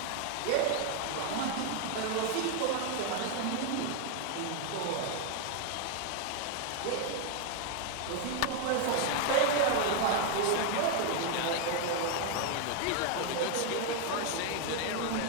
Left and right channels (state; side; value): different; both; correlation 0.01